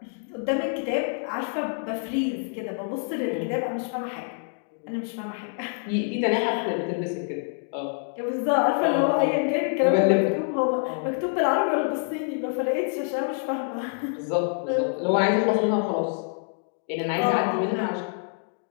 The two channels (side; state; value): right; silent; 56 dB below the other